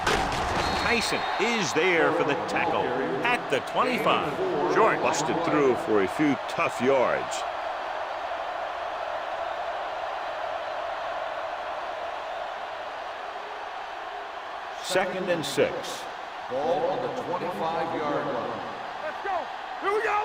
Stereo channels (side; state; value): both; identical; correlation 1.00